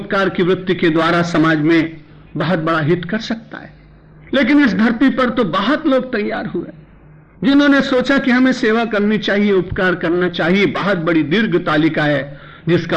की वृत्ति के द्वारा समाज में बहुत बड़ा हित कर सकता है, लेकिन इस धरती पर तो बहुत लोग तैयार हुए जिन्होंने सोचा कि हमें सेवा करनी चाहिए, उपकार करना चाहिए। बहुत बड़ी दीर्घ तालिका है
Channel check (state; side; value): identical; both; correlation 1.00